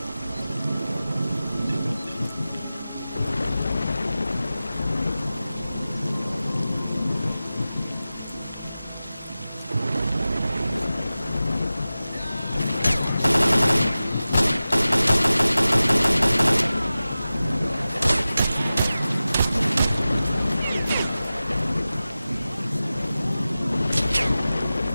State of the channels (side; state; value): both; inverted; correlation -0.95